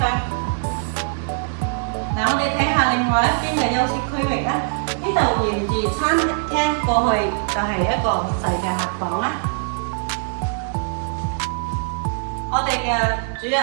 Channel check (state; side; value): silent; left; 64 dB below the other